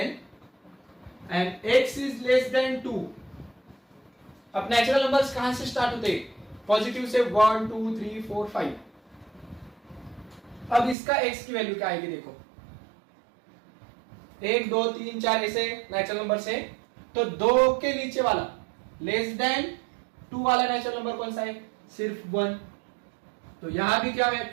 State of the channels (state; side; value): drops out; left; at 11.0 s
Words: and x is less than 2। अब नेचुरल नंबर्स कहां से स्टार्ट होते हैं? पॉजिटिव से 1 2 3 4 5। अब इसका x की वैल्यू क्या आएगी? देखो 1 2 3 4 ऐसे नेचुरल नंबर से, तो 2 के नीचे वाला लेस देन 2 वाला नेचुरल नंबर कौन सा है? सिर्फ 1। तो यहां भी क्या